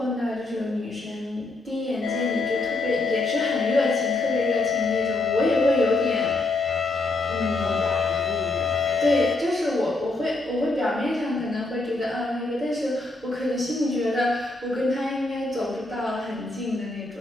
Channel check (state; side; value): quieter; right; 3.1 dB